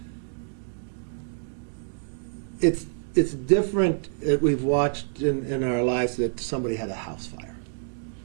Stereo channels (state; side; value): silent; left; digital silence